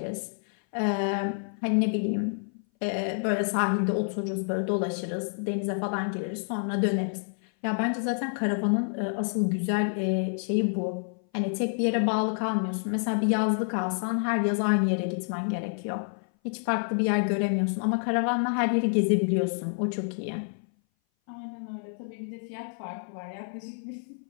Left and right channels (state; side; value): silent; right; 58 dB below the other